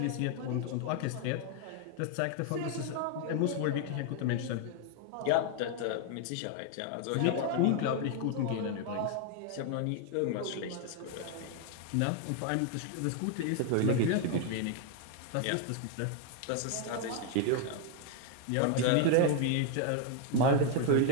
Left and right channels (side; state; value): both; different; correlation 0.01